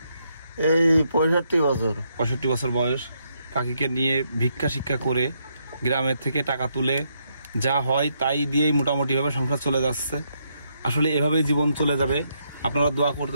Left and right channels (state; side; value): inverted; both; correlation -0.77